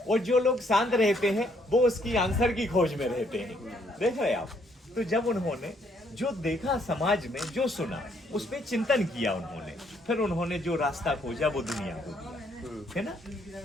और जो लोग शांत रहते हैं वो उसकी आंसर की खोज में रहते हैं। देख रहे आप। तो जब उन्होंने जो देखा समाज में, जो सुना, उस पर चिंतन किया उन्होंने, फिर उन्होंने जो रास्ता खोजा वो दुनिया को दिया, है ना।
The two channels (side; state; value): both; normal; correlation 0.69